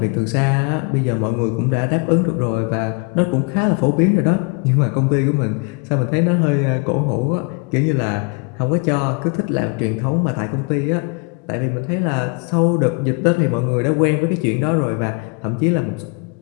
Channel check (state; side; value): quieter; right; 32.4 dB